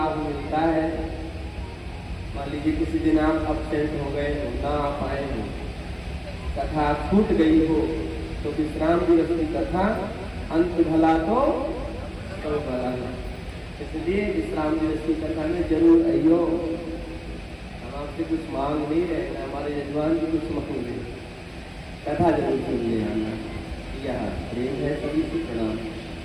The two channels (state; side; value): identical; both; correlation 1.00